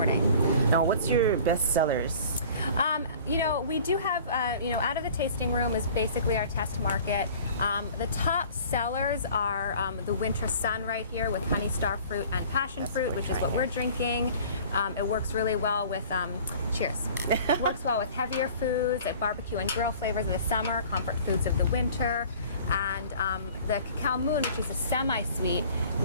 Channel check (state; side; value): inverted; both; correlation -0.47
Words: Now, what's your best sellers? We do have, out of the tasting room is basically our test market. The top sellers are the Winter Sun right here with honey star fruit and passion fruit, which is what we're drinking. It works really well with, cheers. It works well with heavier foods, barbecue and grill flavors of the summer, comfort foods of the winter. And the Cacao Moon, which is a semi-sweet,